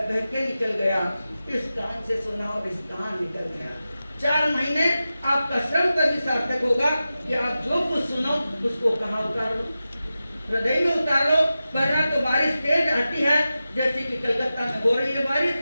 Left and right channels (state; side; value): inverted; both; correlation -0.93